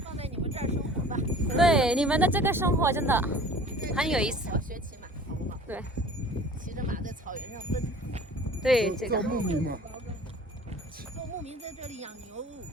对，你们的这个生活真的很有意思。对，骑着马在草原上奔。对，这个。牧民嘛。牧民在这里养牛，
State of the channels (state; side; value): normal; both; correlation 0.46